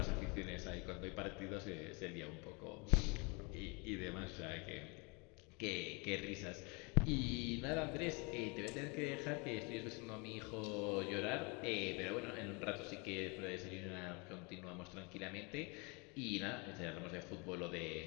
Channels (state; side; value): quieter; right; 30.2 dB